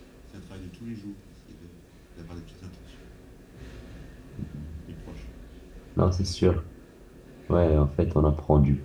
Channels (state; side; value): identical; both; correlation 1.00